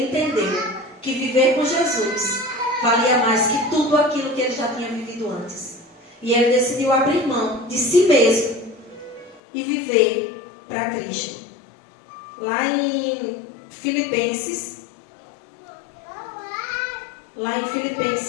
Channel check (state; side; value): drops out; right; at 9.4 s